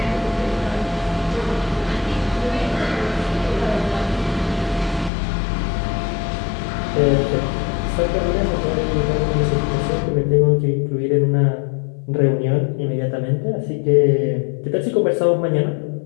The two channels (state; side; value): drops out; right; at 5.1 s